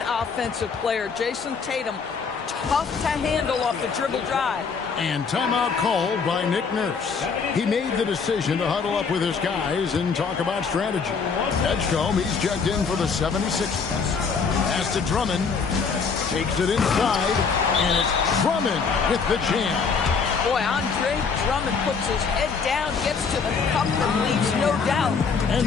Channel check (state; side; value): quieter; right; 5.5 dB